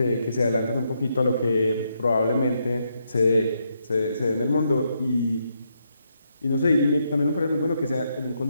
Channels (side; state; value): both; inverted; correlation -0.79